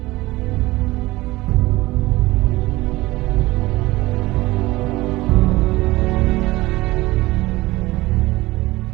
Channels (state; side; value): quieter; left; 19.3 dB